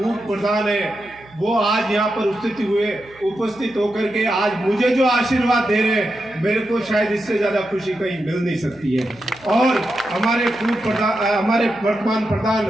प्रधान है, वो आज यहाँ पर उपस्थित होकर के आज मुझे जो आशीर्वाद दे रहे हैं, मेरे को शायद इससे ज्यादा खुशी कहीं मिल नहीं सकती है। और हमारे वर्तमान प्रधान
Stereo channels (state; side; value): noise; right; hum, 26 dB below the sound